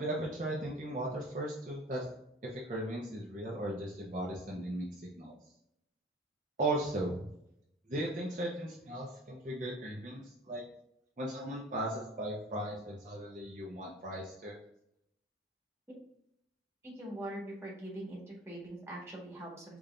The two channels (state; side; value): normal; both; correlation 0.45